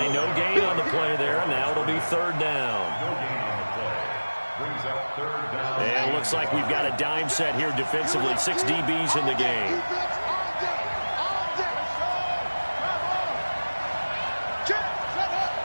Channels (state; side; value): inverted; both; correlation -1.00